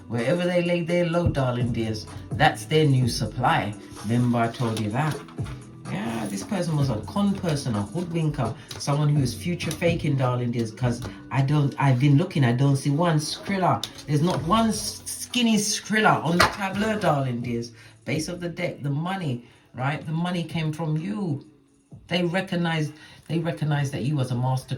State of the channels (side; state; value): both; identical; correlation 1.00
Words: Wherever they lay their load, darling dears, that's their new supply. Remember I told you that. Yeah, this person was a con person, a hoodwinker, someone who is future faking, darling dears, because I've been looking, I don't see one Skrilla. There's not one skinny Skrilla on the tableau, darling dears. Base of the deck, the money, right? The money came from you. They recognized that you was a master